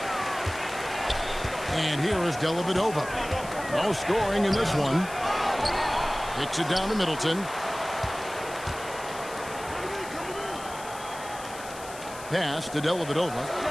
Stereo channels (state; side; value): noise; left; hiss, 15 dB below the sound